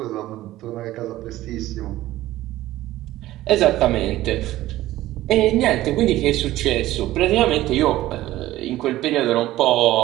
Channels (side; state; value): left; quieter; 15.6 dB